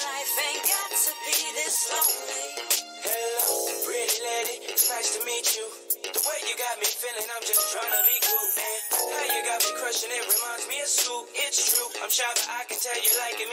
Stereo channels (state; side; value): identical; both; correlation 1.00